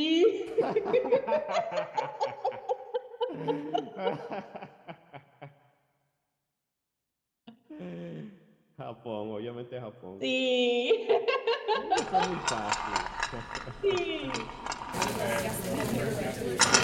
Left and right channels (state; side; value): identical; both; correlation 1.00